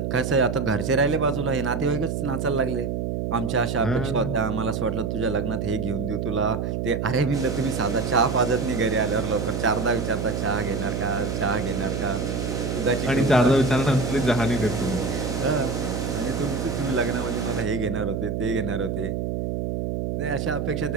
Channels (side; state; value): right; noise; hum, 1 dB below the sound